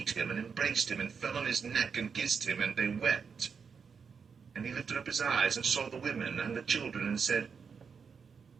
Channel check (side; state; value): left; quieter; 6.0 dB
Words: him, and embraced him, and fell on his neck, and kissed him, and they wept. And he lifted up his eyes, and saw the women and the children, and said,